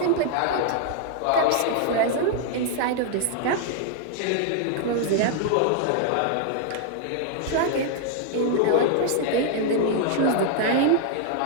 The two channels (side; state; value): both; different; correlation 0.00